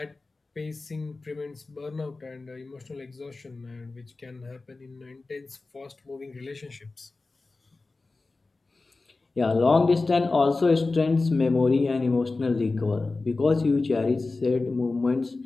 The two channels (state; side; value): quieter; right; 3.5 dB